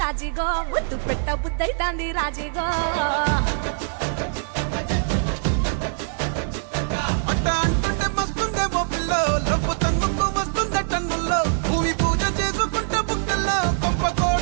రాజిగో ముద్దు పెట్ట బుద్ధైతాంది రాజిగో అట్ట అంటుంటే మస్తుందేమో పిల్లో లవ్వు తన్నుకు వస్తుందే టన్నుల్లో భూమి పూజ చేసుకుంటే బుక్కల్లో గొప్ప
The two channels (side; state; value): left; silent; digital silence